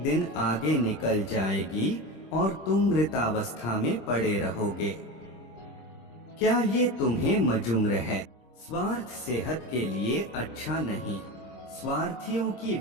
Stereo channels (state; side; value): late; right; 26 ms